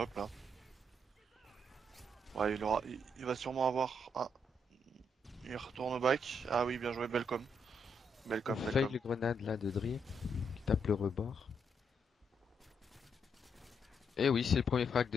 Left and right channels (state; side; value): normal; both; correlation 0.76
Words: là. Ouais, il va sûrement avoir. Ah, il retourne au back. Ah oui, bien joué, Belcom. On Belcom, fail Belcom. le grenade là de Dream, qui tape le rebord. Et oui, c'est le premier frag